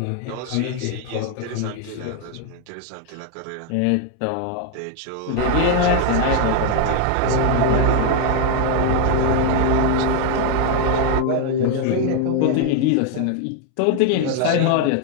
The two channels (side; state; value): both; different; correlation 0.00